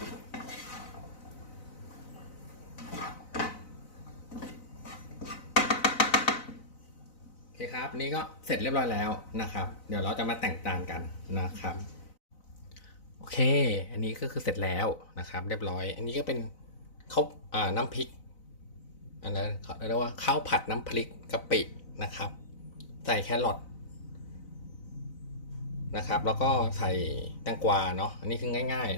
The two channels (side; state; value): right; late; 4.0 ms